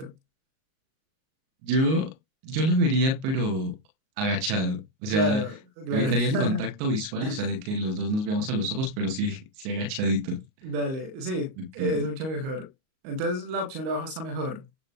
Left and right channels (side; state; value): left; late; 38 ms